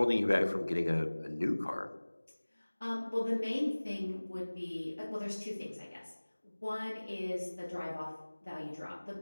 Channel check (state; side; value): inverted; both; correlation -1.00